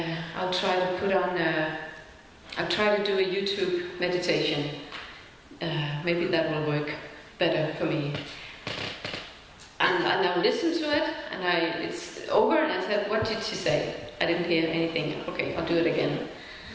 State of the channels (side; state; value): both; identical; correlation 1.00